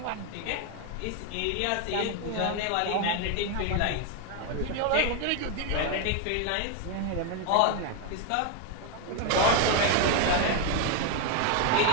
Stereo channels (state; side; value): different; both; correlation 0.01